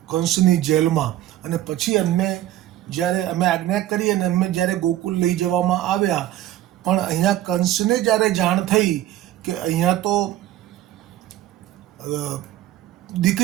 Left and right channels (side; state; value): left; quieter; 13.7 dB